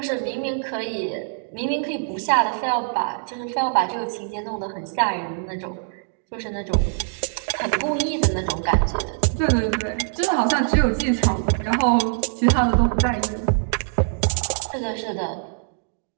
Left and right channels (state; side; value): silent; left; digital silence